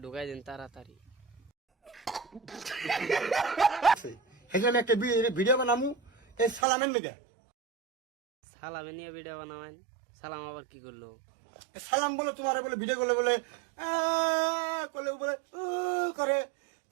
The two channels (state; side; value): drops out; left; at 6.7 s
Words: ঢুকাই দেন তাড়াতাড়ি। সেখানে একটা ভিডিও বানামু এই সালামের লেগে। সালামে নিয়ে ভিডিও বানাবেন? সালাম আবার কি করলো? সালাম বলে তোমার বলে ভিডিও করলে বলে করলে বলে করে